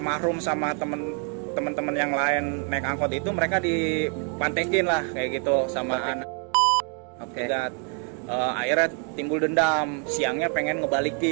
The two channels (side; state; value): left; quieter; 39.4 dB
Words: sama temen-temen yang lain naik angkot itu, mereka dipantekin lah kayak gitu sama anak. Oke. Akhirnya timbul dendam, siangnya pengen